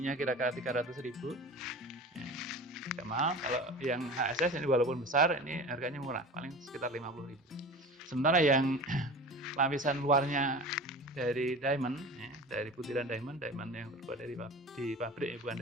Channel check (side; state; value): both; normal; correlation 0.35